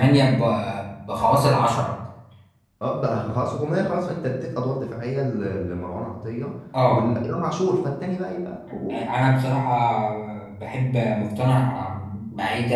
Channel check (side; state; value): both; identical; correlation 1.00